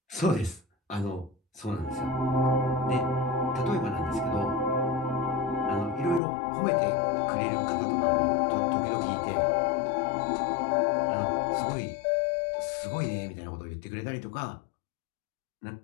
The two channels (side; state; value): right; drops out; at 6.2 s